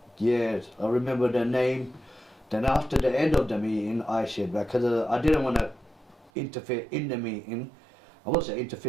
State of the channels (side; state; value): left; drops out; at 6.3 s